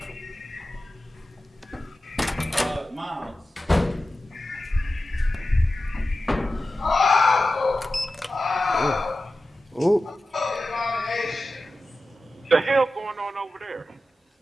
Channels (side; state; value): both; normal; correlation 0.93